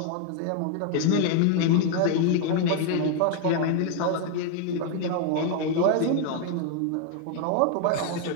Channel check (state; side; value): different; both; correlation 0.01